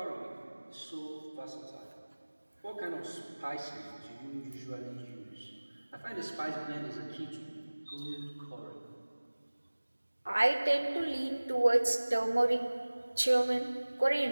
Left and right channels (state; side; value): inverted; both; correlation -1.00